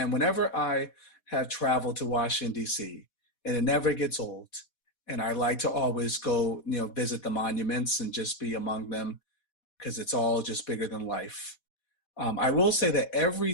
whenever I have traveled to Washington, D.C., and it never gets old, and I like to always go, visit the monuments and just be among them because it's all just bigger than life. I will say that every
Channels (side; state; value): right; late; 4.1 ms